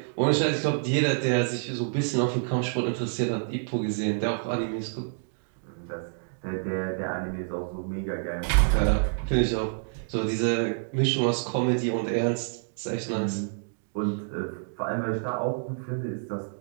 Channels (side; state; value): left; silent; digital silence